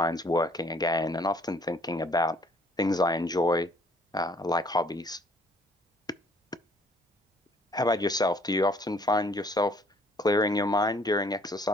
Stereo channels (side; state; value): both; normal; correlation 0.60